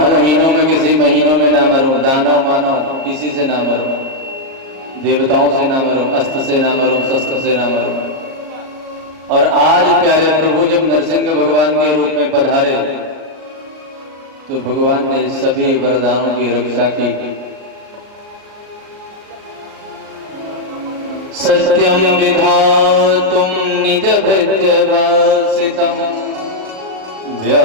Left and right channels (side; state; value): left; late; 38 ms